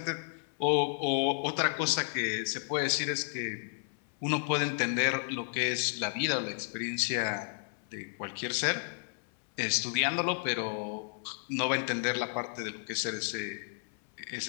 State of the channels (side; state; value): right; silent; 56 dB below the other